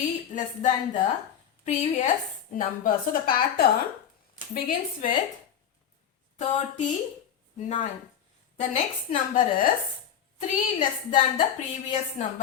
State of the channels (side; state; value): right; quieter; 8.9 dB